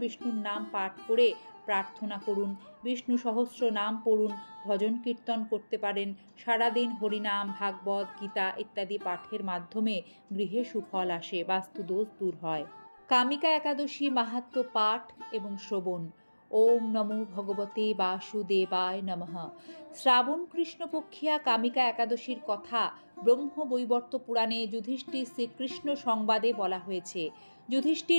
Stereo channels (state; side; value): inverted; both; correlation -1.00